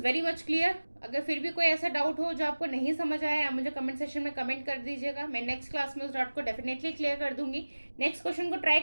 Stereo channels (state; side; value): inverted; both; correlation -1.00